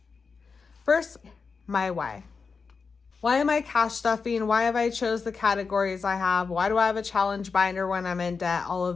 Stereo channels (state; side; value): quieter; right; 5.0 dB